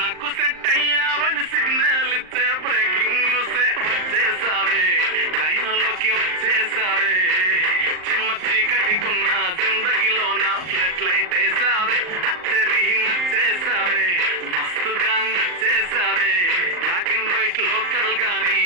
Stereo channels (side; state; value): left; late; 39 ms